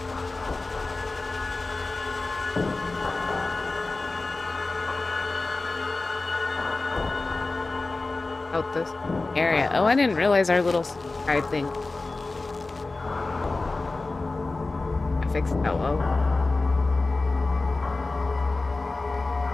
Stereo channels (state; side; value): quieter; right; 3.4 dB